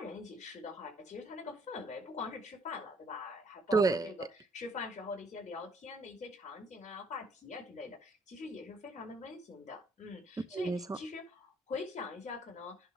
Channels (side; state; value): both; normal; correlation 0.65